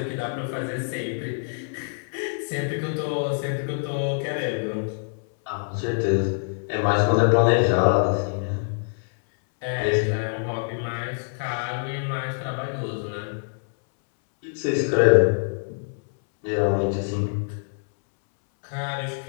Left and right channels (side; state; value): right; silent; 62 dB below the other